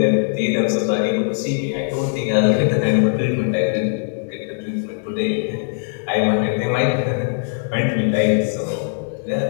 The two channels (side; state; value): right; silent; digital silence